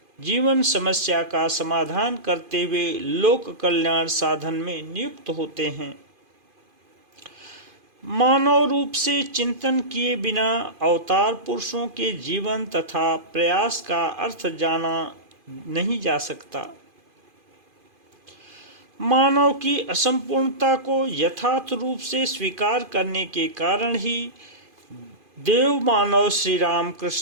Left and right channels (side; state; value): left; late; 2.5 ms